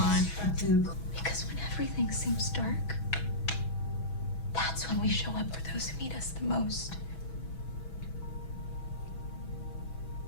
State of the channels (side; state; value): right; late; 6.1 ms